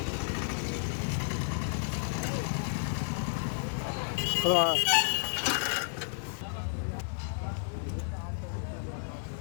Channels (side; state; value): right; silent; digital silence